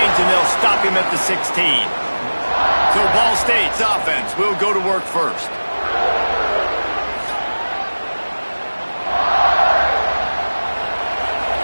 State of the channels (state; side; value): inverted; both; correlation -1.00